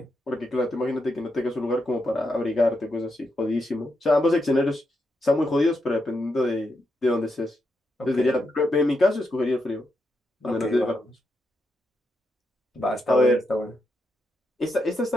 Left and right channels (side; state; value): both; normal; correlation 0.83